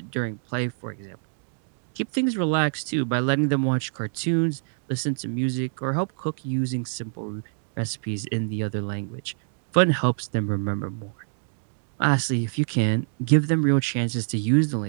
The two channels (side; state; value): left; silent; digital silence